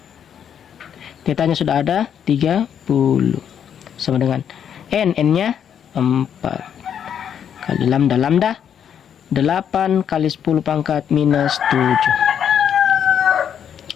Theta-nya sudah ada 30 sama dengan N-nya 4 kali lambda 8 kali 10 pangkat minus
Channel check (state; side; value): quieter; right; 8.6 dB